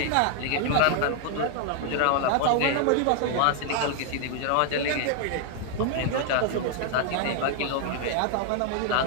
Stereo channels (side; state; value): both; different; correlation 0.00